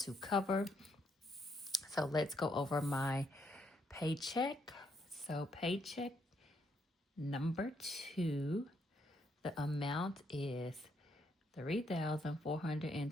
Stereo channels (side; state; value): both; normal; correlation 0.74